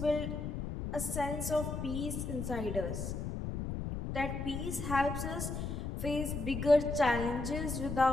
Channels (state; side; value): noise; left; rumble, 4 dB below the sound